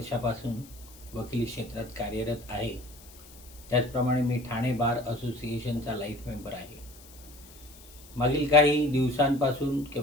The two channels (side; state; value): left; noise; hiss, 21 dB below the sound